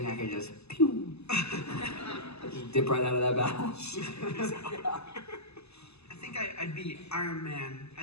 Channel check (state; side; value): late; right; 0.79 ms